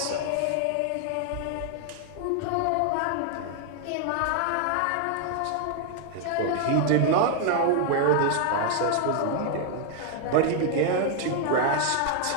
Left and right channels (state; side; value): different; both; correlation 0.00